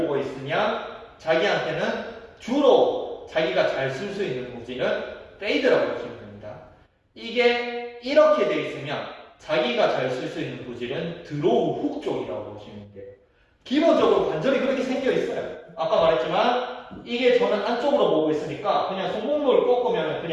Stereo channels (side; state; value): both; identical; correlation 1.00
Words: 있으면 자기한테는 주로 자기가 잘 쓸 수 있는 구질은 페이드라고 보시면 됩니다. 이게 이렇게 돼 있으면 자기가 잘 쓸 수 있는 구질은 드로우 훅 쪽이라고 보시면 돼요. 기본적으로 관절이 그렇게 생겨 있어요. 아까 말했지만 이게 저는 안쪽으로 보고 있으니까 그냥 손목을 꺾으면